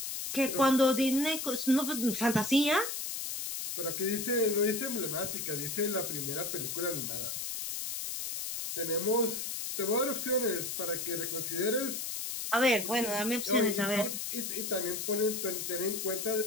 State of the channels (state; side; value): noise; left; hiss, 4 dB below the sound